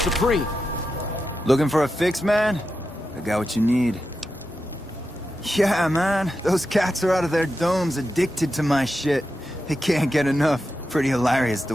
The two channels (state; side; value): normal; both; correlation 0.89